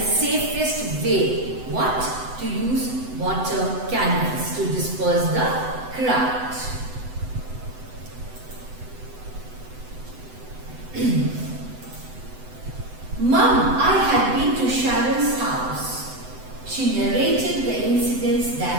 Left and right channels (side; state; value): left; late; 7.9 ms